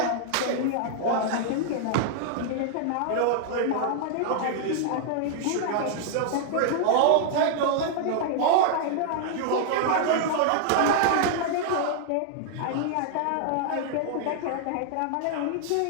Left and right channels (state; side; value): different; both; correlation -0.01